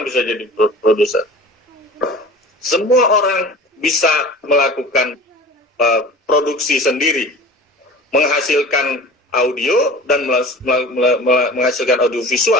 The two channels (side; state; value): both; normal; correlation 0.39